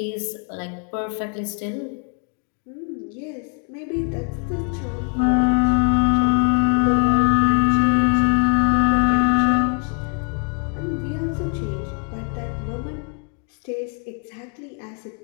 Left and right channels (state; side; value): quieter; right; 38.9 dB